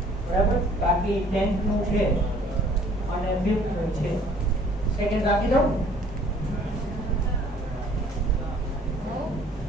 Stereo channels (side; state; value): both; normal; correlation 0.56